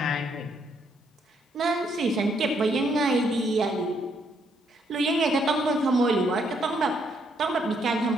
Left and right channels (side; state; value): both; normal; correlation 0.73